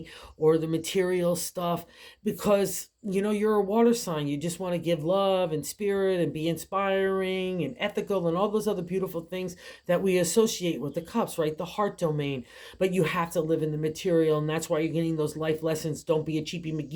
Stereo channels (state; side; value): identical; both; correlation 1.00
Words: or the material stuff, because you're a water sign. You just want to give love and spirit and be inspiring and ethical and all those other beautiful things that we associate with the cups, right? The heart domain. But you have to live in the material, and that's why you're getting those life lessons. Don't be a cheapy